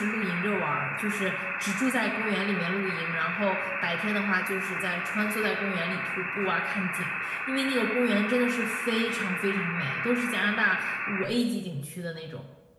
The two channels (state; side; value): identical; both; correlation 1.00